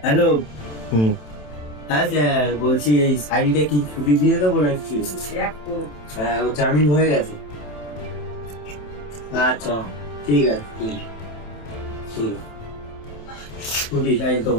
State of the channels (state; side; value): late; right; 27 ms